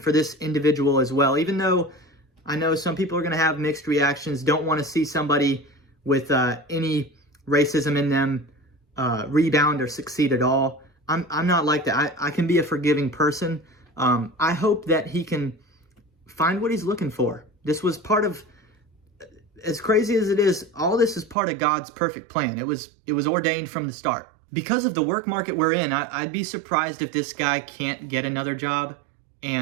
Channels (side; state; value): left; drops out; at 21.4 s